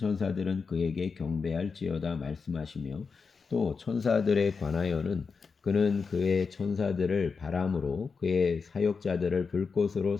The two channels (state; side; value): quieter; right; 5.1 dB